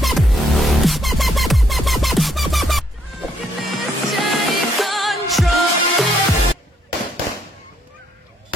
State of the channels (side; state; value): both; normal; correlation 0.71